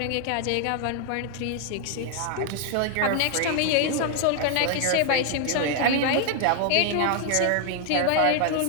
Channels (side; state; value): both; different; correlation 0.00